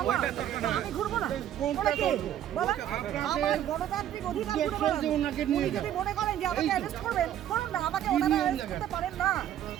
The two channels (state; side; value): quieter; left; 11.2 dB